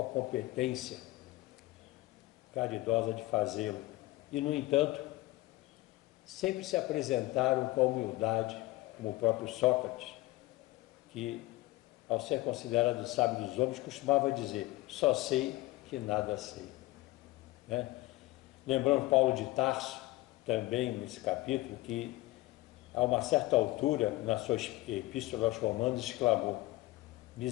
a competência caridosa de fazê-lo. E, no entanto, sempre se apresentaram com a humildade, como o próprio Sócrates, que, ao ser considerado o sábio dos homens, costumava dizer: só sei que nada sei. Lembramos Paulo de Tarso, também nesse capítulo, que a uma certa altura, na sua epístola aos Romanos, exclamou:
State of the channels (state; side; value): quieter; right; 19.0 dB